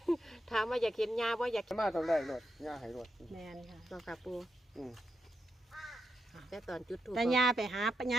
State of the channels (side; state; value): both; normal; correlation 0.85